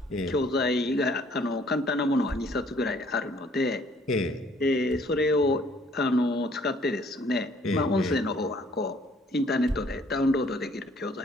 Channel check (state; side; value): normal; both; correlation 0.61